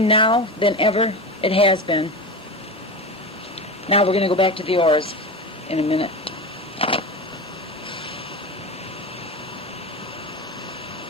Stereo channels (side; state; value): both; normal; correlation 0.24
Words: now than ever it has been. Now we're going to go back to the auras in a minute.